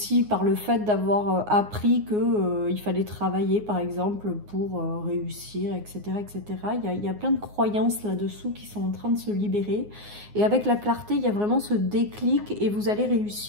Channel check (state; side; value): late; left; 9.6 ms